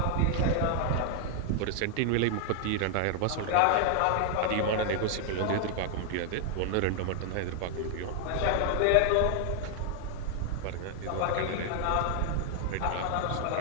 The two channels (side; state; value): both; different; correlation 0.00